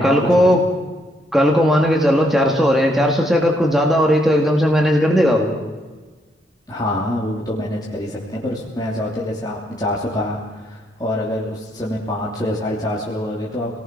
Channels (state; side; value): normal; both; correlation 0.73